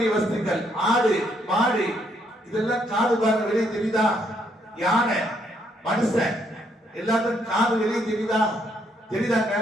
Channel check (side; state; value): both; normal; correlation 0.72